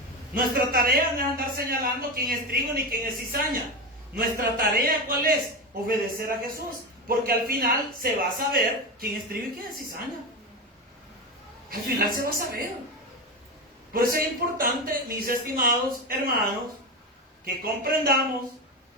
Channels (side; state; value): both; normal; correlation 0.18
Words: Nuestra tarea no es andar señalando quién es trigo ni quién es cizaña. Nuestra tarea, ¿cuál es? Obedecer a Jesús, porque al final se va a saber quién es trigo y quién es cizaña. Al final se va a saber. Por eso es importante, mis estimados hermanos, que comprendamos